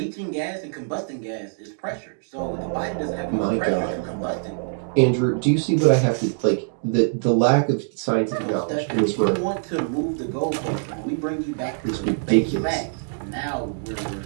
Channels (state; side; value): silent; left; digital silence